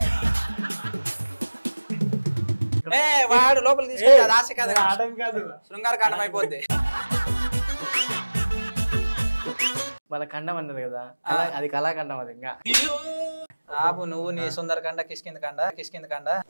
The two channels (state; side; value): inverted; both; correlation -1.00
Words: వాడు లోపల తీసుకెళ్ళి ఆశ కాదు, శృంగార కాండం అయిపోద్ది. వాళ్ళ ఖండం అన్నది కదా, అది కళాఖండం. అది ఇంకా ఆపు నువ్వు, నీ సుందరకాండ కిష్కింద కాండ.